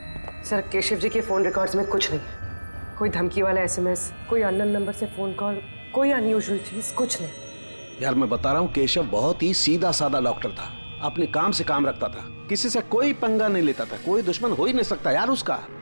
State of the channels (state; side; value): inverted; both; correlation -1.00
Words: सर केशव जी के फोन रिकॉर्ड्स में कुछ नहीं, कोई धमकी वाला एसएमएस, कोई अननोन नंबर से फोन कॉल, कोई अनयूजुअल चीज, कुछ नहीं। यार मैं बता रहा हूँ केशव बहुत ही सीधा साधा डॉक्टर था, अपने काम से काम रखता था, किसी से कोई पंगा नहीं लेता था, कोई दुश्मन हो ही नहीं सकता यार उसका।